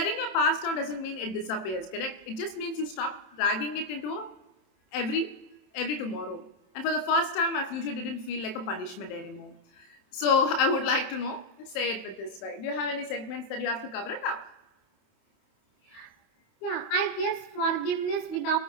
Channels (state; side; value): late; right; 27 ms